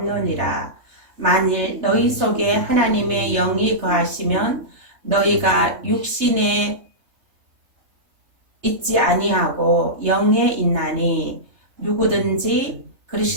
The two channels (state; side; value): late; left; 3.2 ms